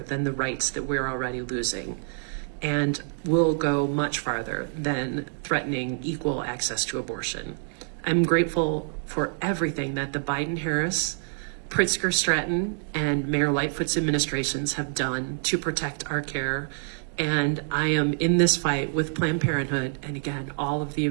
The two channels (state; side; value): silent; left; digital silence